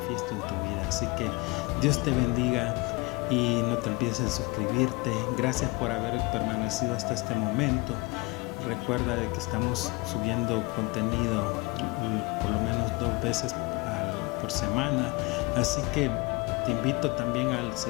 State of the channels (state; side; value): quieter; right; 25.4 dB